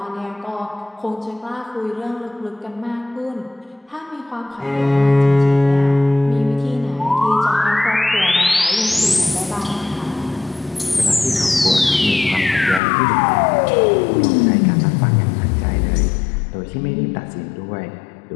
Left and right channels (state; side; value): drops out; right; at 12.8 s